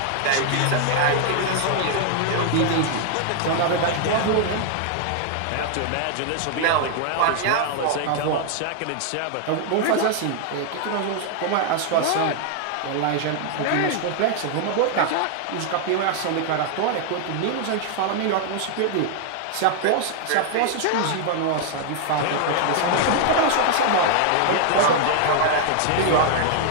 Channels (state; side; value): different; both; correlation 0.00